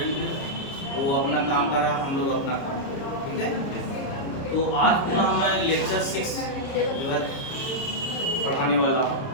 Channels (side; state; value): right; late; 30 ms